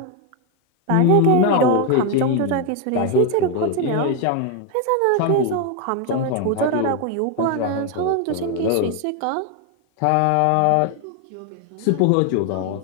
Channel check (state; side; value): different; both; correlation 0.01